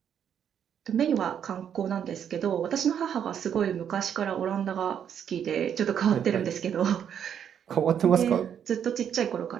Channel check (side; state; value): left; quieter; 8.7 dB